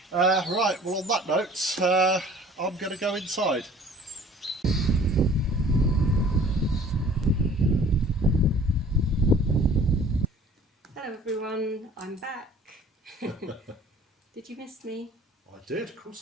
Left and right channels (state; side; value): normal; both; correlation 0.50